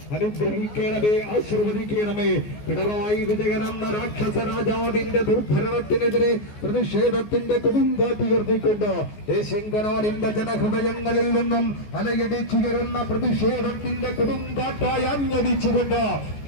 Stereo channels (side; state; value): right; late; 14 ms